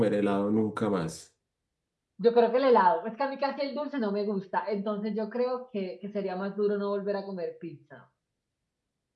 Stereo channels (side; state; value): both; identical; correlation 1.00